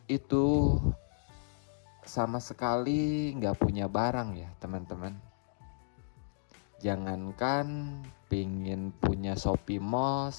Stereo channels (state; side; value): silent; right; digital silence